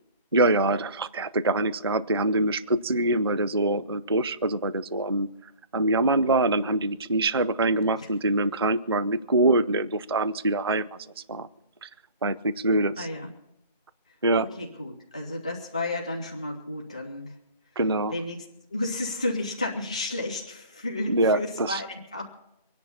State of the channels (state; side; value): inverted; both; correlation -0.45